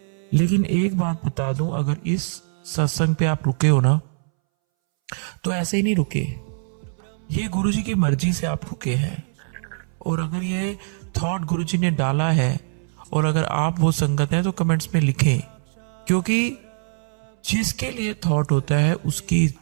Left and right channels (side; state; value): left; silent; 63 dB below the other